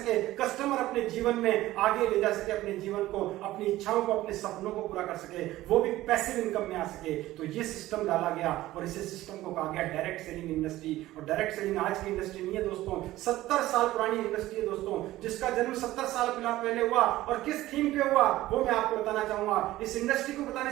कस्टमर अपने जीवन में आगे ले जा सके, अपने जीवन को, अपनी इच्छाओं को, अपने सपनों को पूरा कर सके, वो भी पैसिव इनकम में आ सके। तो ये सिस्टम डाला गया और इसी सिस्टम को कहा गया डायरेक्ट सेलिंग इंडस्ट्री। और डायरेक्ट सेलिंग आज की इंडस्ट्री नहीं है दोस्तों, 70 साल पुरानी इंडस्ट्री है दोस्तों, जिसका जन्म 70 साल पहले हुआ। और किस थीम पे हुआ वो मैं आपको बताना चाहूंगा। इस इंडस्ट्री को बताने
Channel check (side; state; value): left; quieter; 16.1 dB